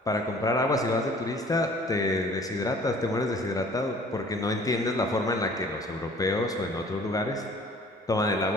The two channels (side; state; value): both; normal; correlation 0.51